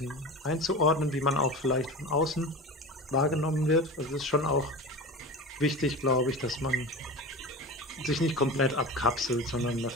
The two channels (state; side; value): normal; both; correlation 0.30